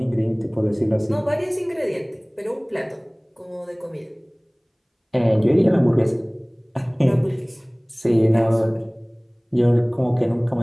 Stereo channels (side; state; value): both; identical; correlation 1.00